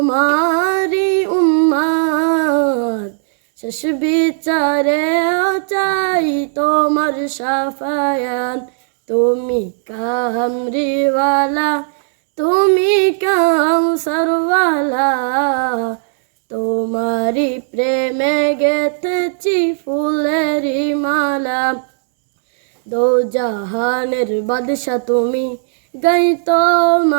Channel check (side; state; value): left; silent; digital silence